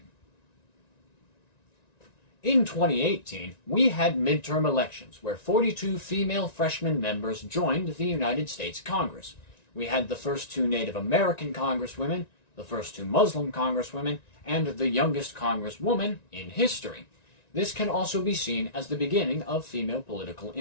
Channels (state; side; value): late; right; 1.9 ms